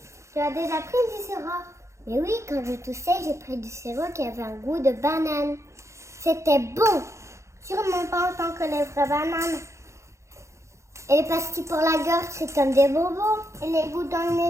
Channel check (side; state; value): left; late; 0.14 ms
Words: Tu as déjà pris du sirop? Mais oui, quand je toussais, j'ai pris du sirop qui avait un goût de banane. C'était bon. Sûrement pas autant que les vraies bananes. Et les pastilles pour la gorge, c'est comme des bonbons. Et les gouttes dans le